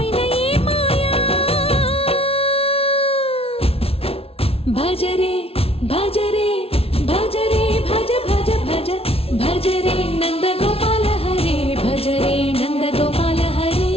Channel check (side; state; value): right; late; 0.28 ms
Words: भजरे भजरे भजरे भज भज भज भजरे नंदगोपाल हरे भजरे नंदगोपाल हरे